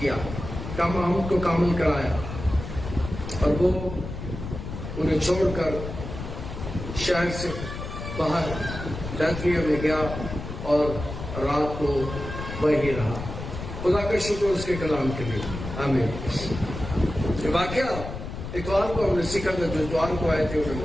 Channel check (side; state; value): left; noise; rumble, 8 dB below the sound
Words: حمد کو کامل کرایا؟ اور وہ انہیں چھوڑ کر شہر سے باہر بیتنیہ میں گیا اور رات کو وہیں رہا۔ خدا کا شکر اس کے کلام کے لیے، آمین۔ یہ واقعہ اتوار کو ہم نے سیکھا تھا، جو اتوار کو آئے تھے انہوں